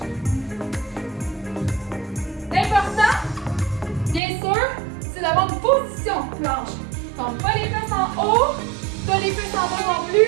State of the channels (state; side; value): drops out; left; at 4.2 s